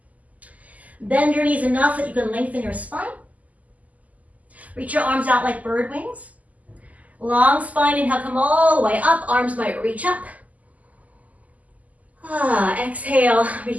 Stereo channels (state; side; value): late; left; 0.076 ms